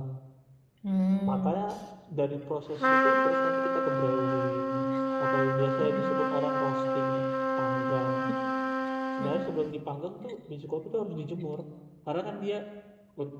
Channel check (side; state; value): both; identical; correlation 1.00